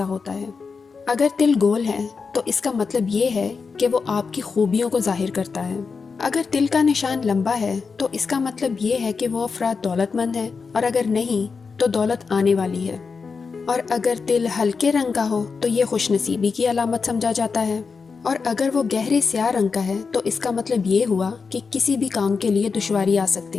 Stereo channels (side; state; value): right; quieter; 5.1 dB